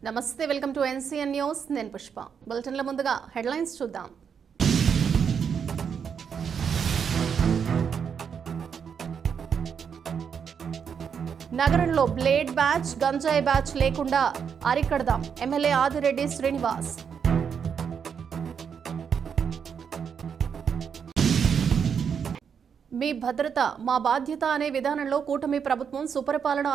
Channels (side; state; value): left; quieter; 7.1 dB